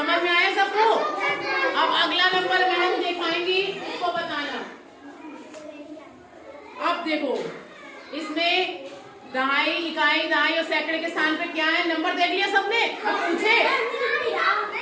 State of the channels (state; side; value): identical; both; correlation 1.00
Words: में आया सबको? अब अगला नंबर मैडम दिखाएंगी, उसको बताना। अब देखो इसमें दहाई, इकाई, दहाई और सैकड़े के स्थान पे क्या है? नंबर देख लिया सबने? अब पूछे,